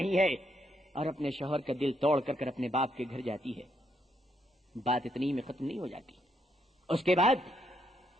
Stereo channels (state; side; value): normal; both; correlation 0.76